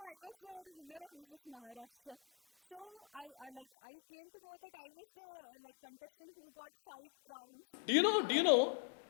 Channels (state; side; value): drops out; right; at 3.7 s